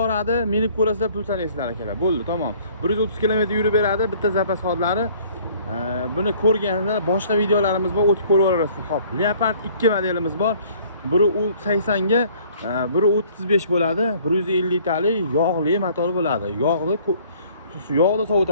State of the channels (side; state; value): both; inverted; correlation -0.56